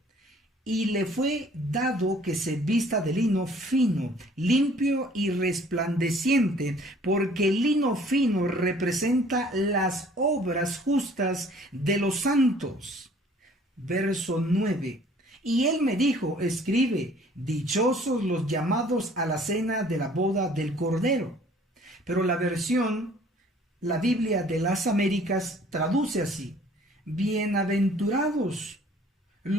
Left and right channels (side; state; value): both; normal; correlation 0.55